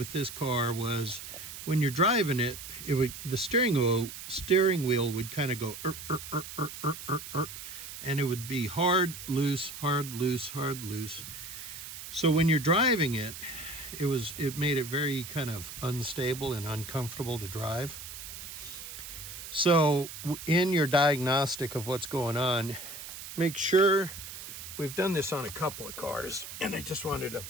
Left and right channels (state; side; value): noise; right; hiss, 11 dB below the sound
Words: this car was when you're driving it, the steering wheel would kind of go and it would be hard, loose, hard, loose, hard, loose. So when you're driving it, it made it very kind of unstable and uncomfortable to drive. So in your diagnostic of what's going on, make sure, we've done this on a couple of cars, and I just wanted to